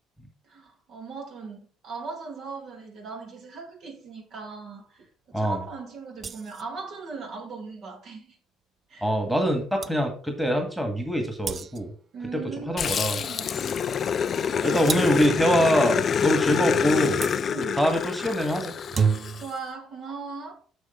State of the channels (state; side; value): normal; both; correlation 0.80